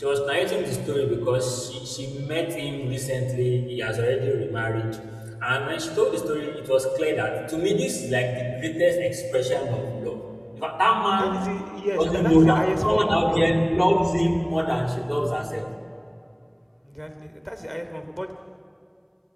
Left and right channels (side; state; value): both; identical; correlation 1.00